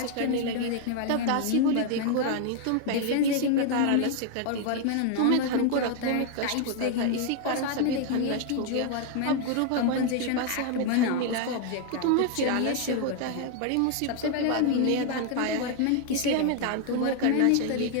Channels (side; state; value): both; different; correlation 0.00